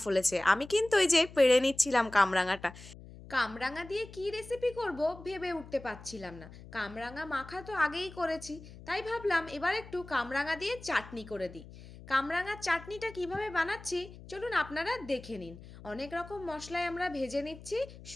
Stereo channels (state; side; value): noise; left; hum, 17 dB below the sound